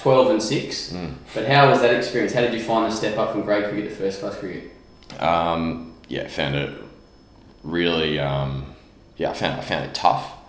and 6, but how was that experience? How did you find the step up from grade cricket to first class cricket? Found it really, I found it tough.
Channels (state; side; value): identical; both; correlation 1.00